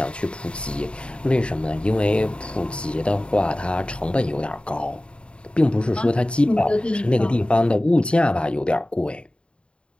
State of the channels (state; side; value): late; right; 0.055 ms